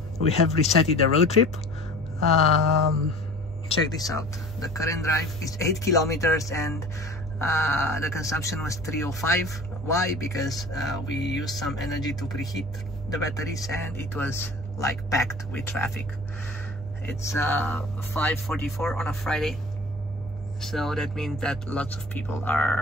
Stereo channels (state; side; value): normal; both; correlation 0.42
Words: we have resetted the road trip. Check this out. The current drive is 8 kilometers and the consumption was 305. Why? Because we used some energy to preheat the batteries and it was like packed with traffic. It's 5:44 on a Friday, so that means that lots of people